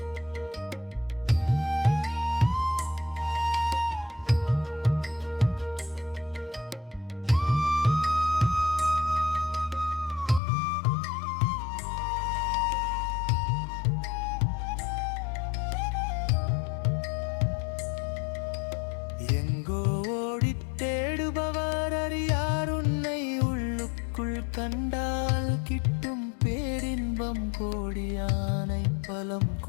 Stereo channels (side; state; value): right; drops out; at 10.4 s